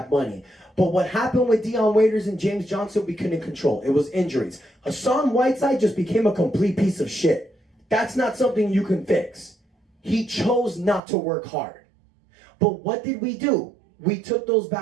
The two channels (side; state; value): left; drops out; at 11.0 s